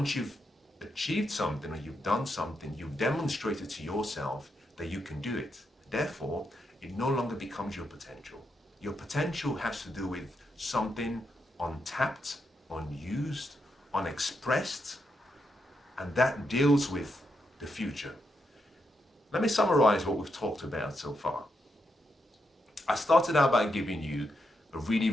you've achieved something or you've done something, you've demonstrated to yourself that you can do it. Therefore, it no longer becomes your potential. Your potential has to do with something untapped, unused, unexpressed, and that deals with the future. Let me summarize what we've talked about so far. I started out by giving you a really,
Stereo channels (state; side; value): normal; both; correlation 0.82